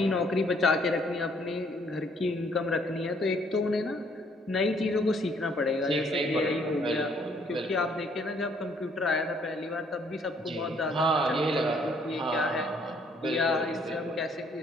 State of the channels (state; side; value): normal; both; correlation 0.64